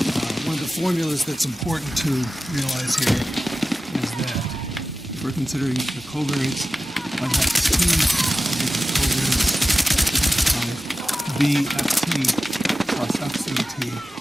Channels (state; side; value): normal; both; correlation 0.95